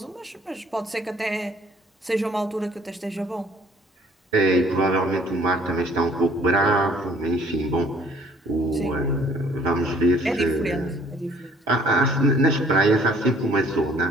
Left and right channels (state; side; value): normal; both; correlation 0.58